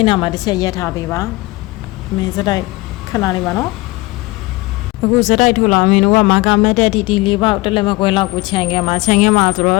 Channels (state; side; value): quieter; right; 21.5 dB